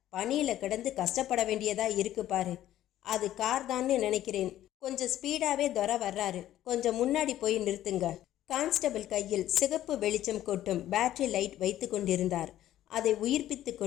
பனியில கிடந்து கஷ்டப்பட வேண்டியதா இருக்கு பாரு. அது கார் தான்னு நினைக்கிறேன். கொஞ்சம் ஸ்பீடாவே துரை வர்றாரு. கொஞ்சம் முன்னாடி போய் நிறுத்துங்க. கான்ஸ்டபிள் கையில் சிகப்பு வெளிச்சம் கொட்டும் பேட்டரி லைட் வைத்து கொண்டிருந்தார். அதை உயிர்ப்பித்து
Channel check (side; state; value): right; quieter; 13.0 dB